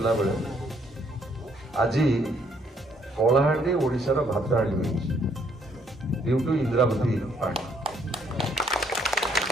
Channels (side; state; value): both; normal; correlation 0.68